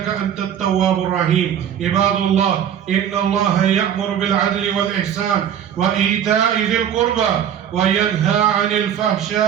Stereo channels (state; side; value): quieter; left; 9.3 dB